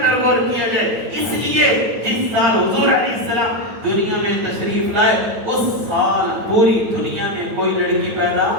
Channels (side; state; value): left; late; 9.1 ms